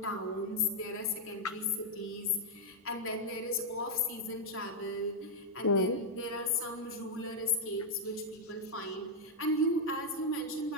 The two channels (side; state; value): both; normal; correlation -0.01